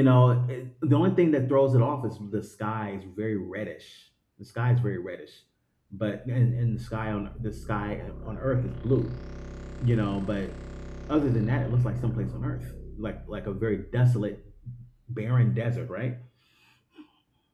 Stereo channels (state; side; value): identical; both; correlation 1.00